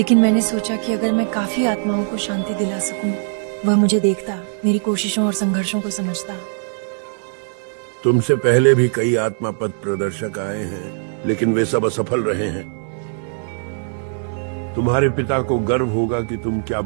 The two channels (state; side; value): silent; left; 65 dB below the other